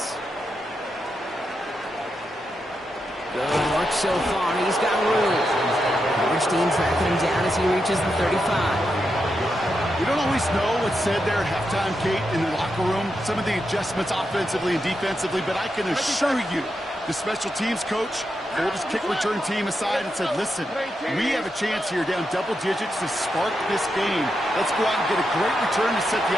Good work so far. He's got room. Overstein tracking him down as he reaches the 35. We don't always know what's said there at halftime, Kate, in the locker room. Some of the adjustments offensively and defensively, but I can assure you, the special teams coach pulled his kick return team aside and said, listen, we have a chance here down double digits to spark this game. Let's go out and get a great return to set the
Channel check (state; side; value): normal; both; correlation 0.85